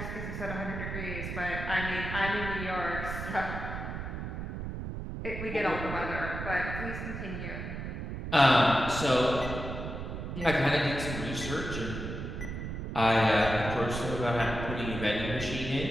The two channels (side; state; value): right; noise; rumble, 6 dB below the sound